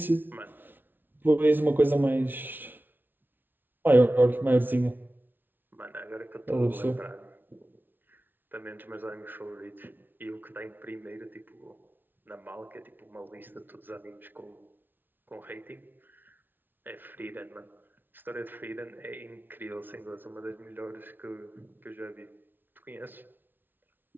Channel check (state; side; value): late; left; 0.094 ms